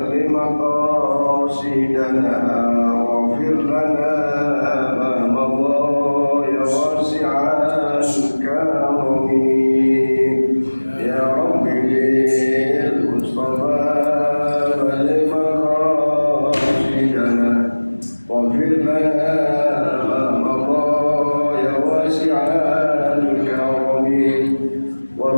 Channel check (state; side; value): inverted; both; correlation -1.00